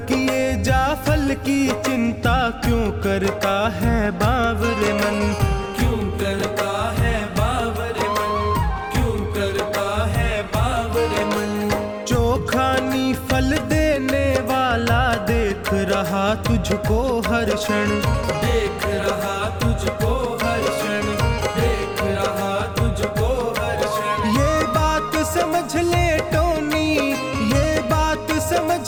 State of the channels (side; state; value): both; identical; correlation 1.00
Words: किए जा फल की चिंता क्यों करता है बावरे मन, क्यों करता है बावरे मन, क्यों करता है बावरे मन। चोखानी फल देने वाला देख रहा तुझको हर क्षण, देख रहा तुझको हर क्षण, देख रहा तुझको हर क्षण। ये बात समझ ले टोनी, ये बात समझ